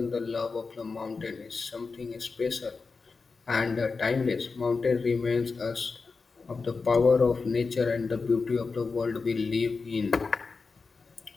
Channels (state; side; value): quieter; right; 4.5 dB